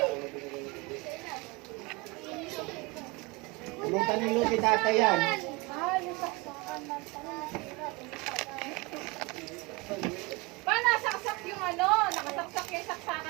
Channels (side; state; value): left; quieter; 24.2 dB